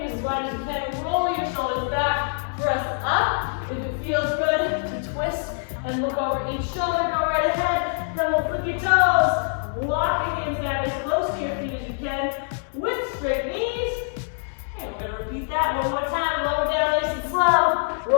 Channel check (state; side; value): silent; right; 62 dB below the other